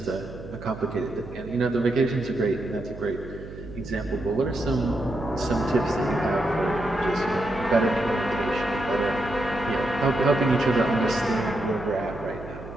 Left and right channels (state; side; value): noise; right; hum, 13 dB below the sound